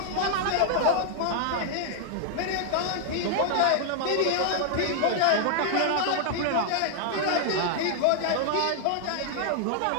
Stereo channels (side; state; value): both; different; correlation 0.00